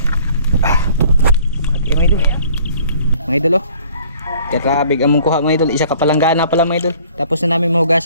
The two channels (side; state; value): both; inverted; correlation -0.54